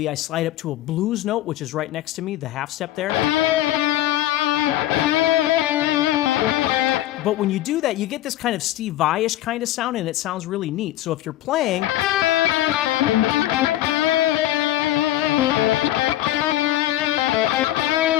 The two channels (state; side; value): quieter; right; 14.2 dB